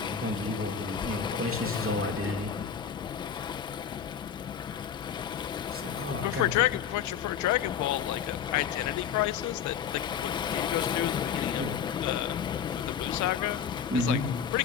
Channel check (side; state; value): right; quieter; 7.8 dB